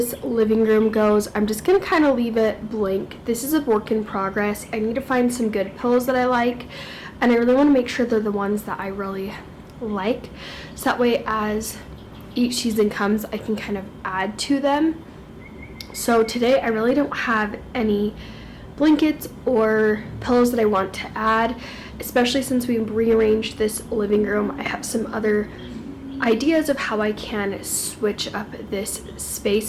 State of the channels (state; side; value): identical; both; correlation 1.00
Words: living room goes, I'm just going to kind of leave it blank. This is a work in progress. I need to find some good pillows that I like, and I really want to make sure they're the ones that I really like, so that way as each season comes I can kind of add to them. So today I really don't have any blankets or pillows that I want to add, especially since we rearranged this living room. I have some other ideas of how I can switch up this space,